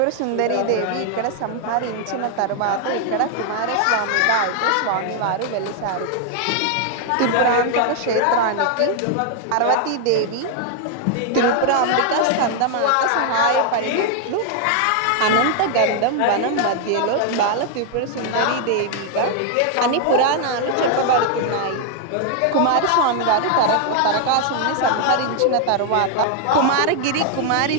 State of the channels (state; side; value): different; both; correlation 0.00